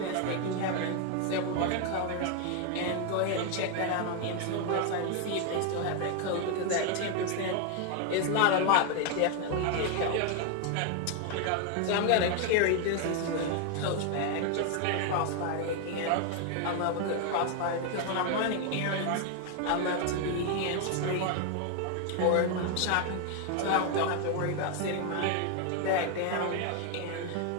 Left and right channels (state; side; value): different; both; correlation 0.01